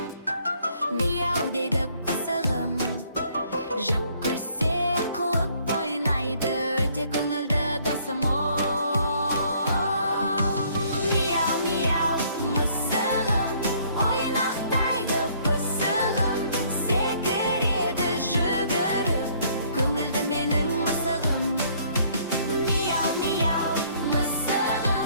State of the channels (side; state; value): both; inverted; correlation -0.62